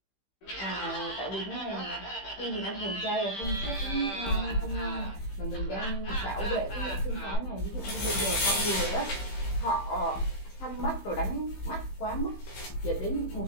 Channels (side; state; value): right; late; 15 ms